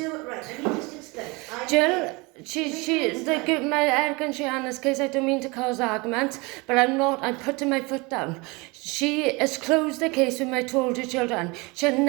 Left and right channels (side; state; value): left; quieter; 26.2 dB